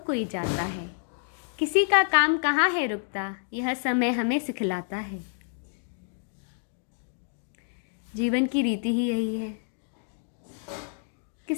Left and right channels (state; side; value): silent; right; digital silence